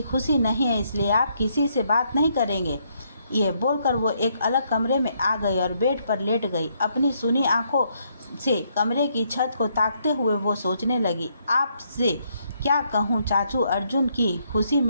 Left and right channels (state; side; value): inverted; both; correlation -0.73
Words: खुशी नहीं है, इसलिए आप किसी से बात नहीं करेंगे। ये बोलकर वो एक अलग कमरे में आ गई और बेड पर लेट गई। अपनी सुनी आंखों से कमरे की छत को ताकते हुए वो सोचने लगी, आपसे क्या कहूँ चाचू, अर्जुन की खुशी